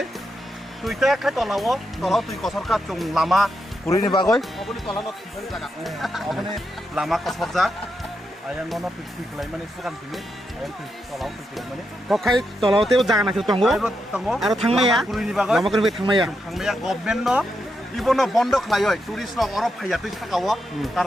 tuite kai tolawo, tolawo tui kosarka chung lama kurini bagoi. Abo ni tolano tinggali jaga. Abo ni lama kosarja. Ayang nono tui kelai mani sukan tini. Ayang tui tolawo tui kelai mani. kokai tolauteo jaga nakhil tongo Ayro tongo. aro thangmaya Kurini bagoi. lama kurbe thangmaya Thangmaya government no. Ibono bondo klayoi. Turis no oro phaya tui sakawo.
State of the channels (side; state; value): both; normal; correlation 0.84